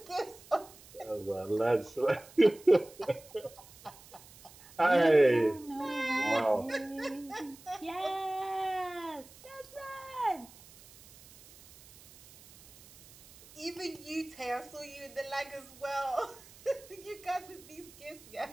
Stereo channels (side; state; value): right; noise; hiss, 22 dB below the sound